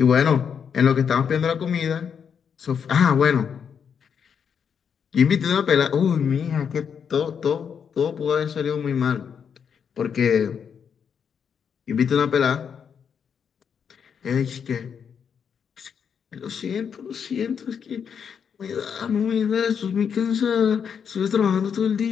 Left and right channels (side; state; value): right; quieter; 7.2 dB